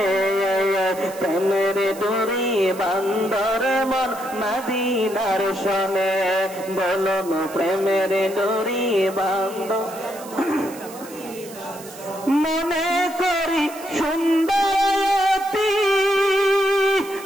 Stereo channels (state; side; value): noise; right; hiss, 17 dB below the sound